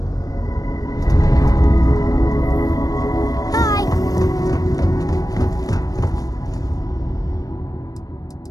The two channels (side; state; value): right; late; 0.18 ms